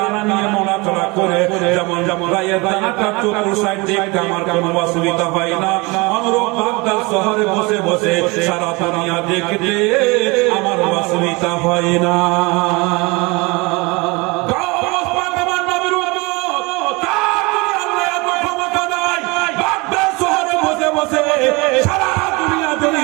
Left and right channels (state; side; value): quieter; left; 25.9 dB